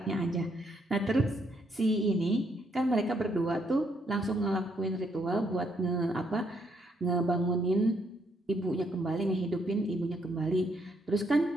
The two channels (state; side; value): normal; both; correlation 0.73